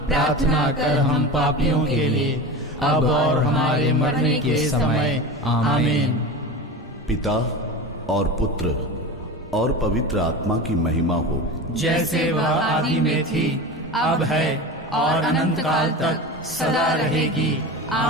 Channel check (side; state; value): both; normal; correlation 0.28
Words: प्रार्थना कर हम पापियों के लिए, अब और हमारे मरने के समय। आमीन। पिता और पुत्र और पवित्र आत्मा की महिमा हो, जैसे वह आदि में थी, अब है, और अनंत काल तक सदा रहेगी।